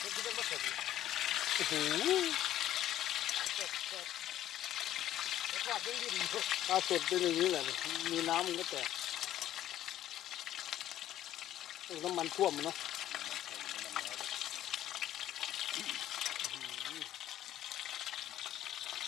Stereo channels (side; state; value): right; quieter; 12.5 dB